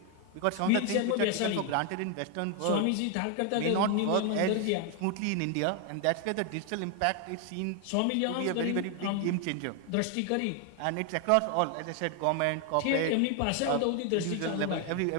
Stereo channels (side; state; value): both; different; correlation 0.01